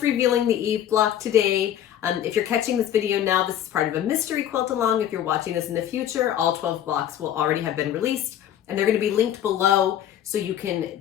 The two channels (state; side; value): quieter; right; 10.8 dB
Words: revealing the Eve block today. If you're catching this video now, this is part of a mystery quilt along. If you're watching this in the future, all 12 blocks will already have been released, and they're going to be linked below so you can